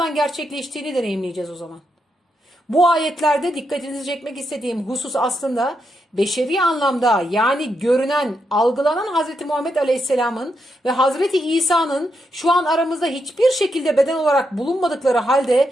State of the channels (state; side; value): normal; both; correlation 0.82